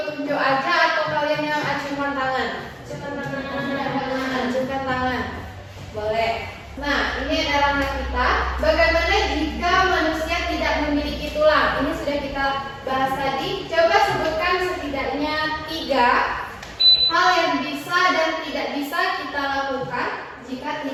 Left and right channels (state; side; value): identical; both; correlation 1.00